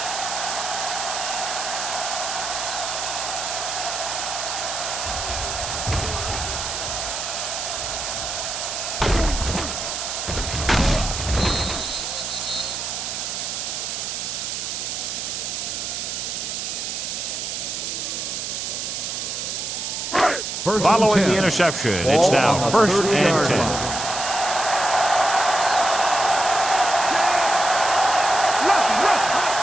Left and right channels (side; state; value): right; noise; hiss, 4 dB below the sound